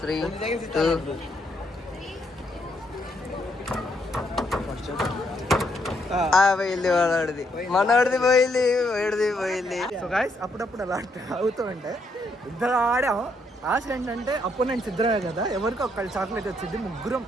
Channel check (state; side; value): normal; both; correlation 0.74